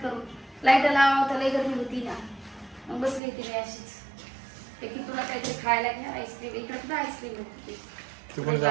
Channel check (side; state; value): left; drops out; at 3.2 s